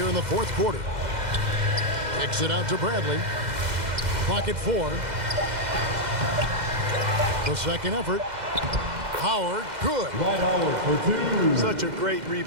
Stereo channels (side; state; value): left; late; 2.0 ms